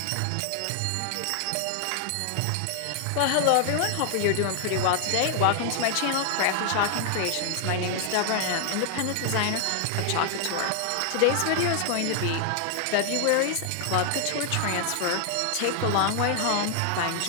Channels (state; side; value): different; both; correlation 0.00